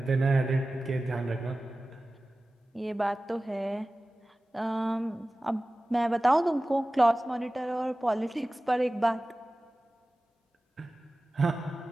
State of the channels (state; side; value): normal; both; correlation 0.96